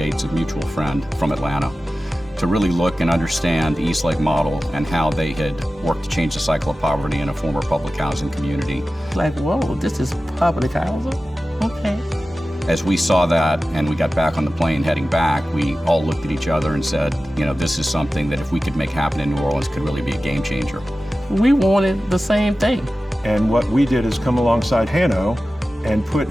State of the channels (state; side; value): normal; both; correlation 0.95